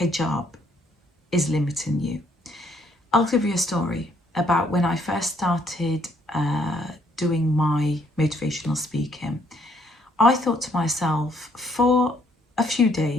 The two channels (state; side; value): normal; both; correlation 0.68